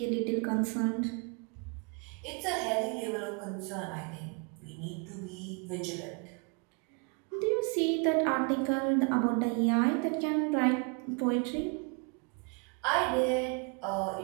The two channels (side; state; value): left; quieter; 35.2 dB